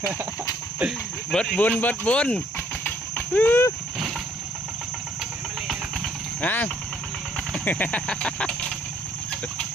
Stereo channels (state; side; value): normal; both; correlation 0.65